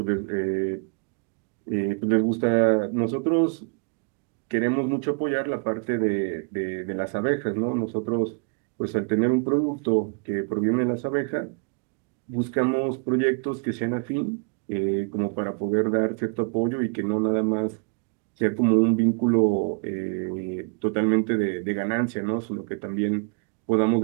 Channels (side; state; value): left; quieter; 37.7 dB